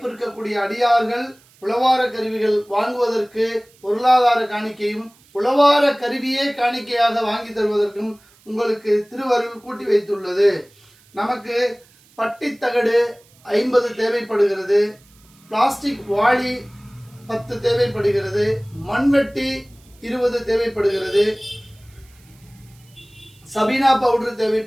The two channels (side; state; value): right; noise; hiss, 30 dB below the sound